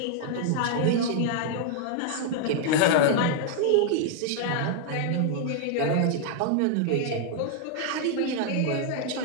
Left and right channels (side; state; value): both; different; correlation 0.00